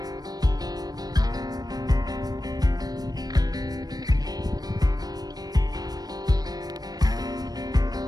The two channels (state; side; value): late; left; 0.19 ms